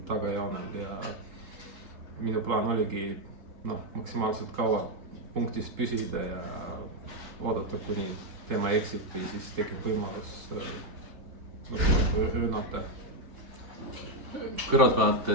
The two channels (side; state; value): left; late; 3.3 ms